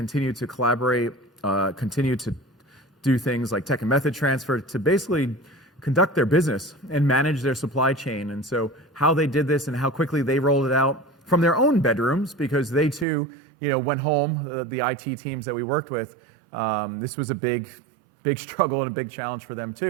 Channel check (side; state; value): left; drops out; at 13.1 s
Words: to collaborate, continue to do things like tech and method transfer to basically conduct their business and manage their supply chain. And so how they did this and how quickly they rolled it out from their own bedrooms, because they too, went home, the IT teams that we worked with, this was a big struggle and a big challenge for them